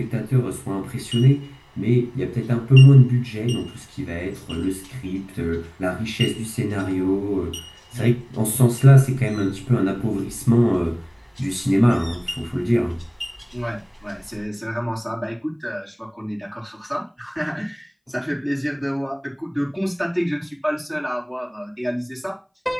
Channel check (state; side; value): identical; both; correlation 1.00